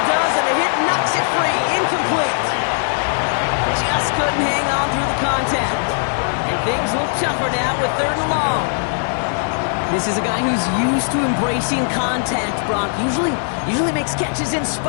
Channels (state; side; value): silent; right; digital silence